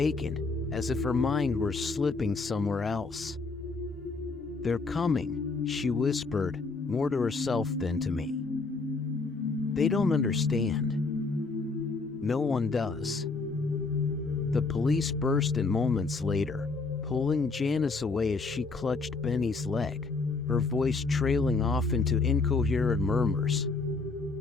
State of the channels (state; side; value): quieter; right; 4.0 dB